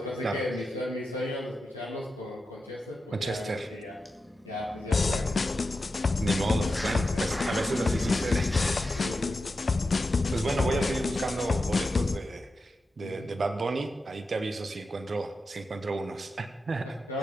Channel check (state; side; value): normal; both; correlation 0.90